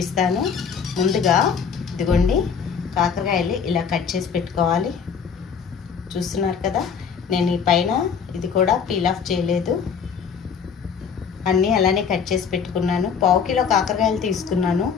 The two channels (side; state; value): right; quieter; 6.6 dB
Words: ముందుగా ఇదిగోండి, కాకరకాయలు ఇలా కట్ చేసి పెట్టుకోవాలి. చూస్తున్నారు కదా, నేను ఈ పైన ఇది కూడా పీల్ ఆఫ్ చేయలేదు, అన్నీ అలానే కట్ చేసి పెట్టుకున్నాను. పావు కిలో కాకరకాయలు తీసుకున్నాను,